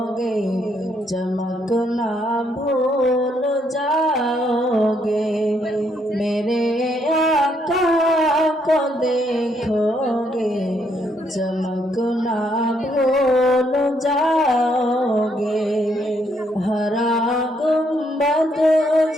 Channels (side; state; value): both; normal; correlation 0.73